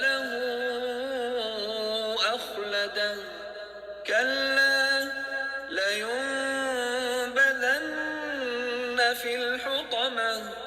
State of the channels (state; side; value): identical; both; correlation 1.00